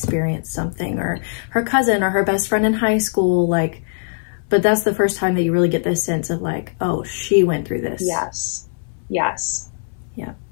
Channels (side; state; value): right; silent; 61 dB below the other